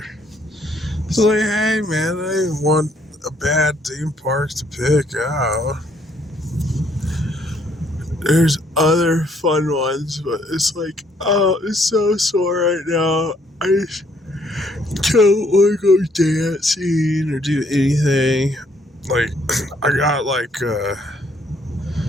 It's like, hey man, I didn't want a bad theme park to pick out. There's other fun ones, but it's like, oh, it's so sore right now. I just don't want to go dancing or do anything. Like, I got like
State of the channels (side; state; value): both; normal; correlation 0.67